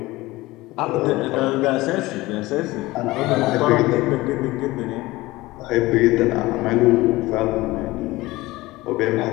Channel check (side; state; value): right; quieter; 19.6 dB